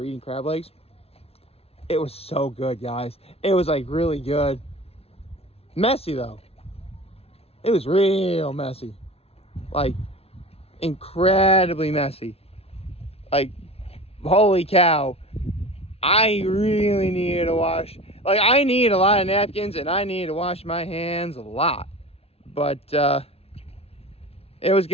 eating crab legs. It was so good, guys. It was really good. Messy though. It was real messy. Incredibly messy. Holy cow. I really needed to wash. I need a lot of napkins and I needed to wash my hands a lot. But it was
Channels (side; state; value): right; late; 0.29 ms